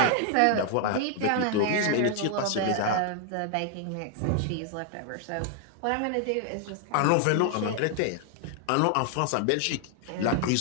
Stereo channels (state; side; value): different; both; correlation 0.00